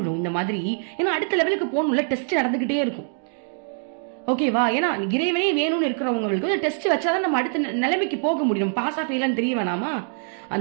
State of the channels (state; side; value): silent; left; digital silence